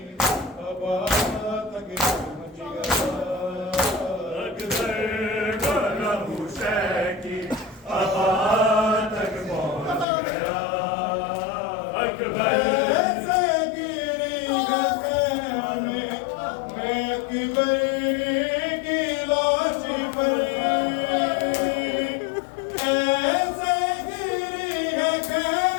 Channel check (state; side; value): drops out; right; at 10.1 s